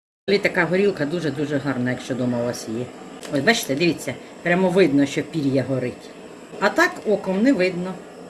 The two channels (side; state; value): both; identical; correlation 1.00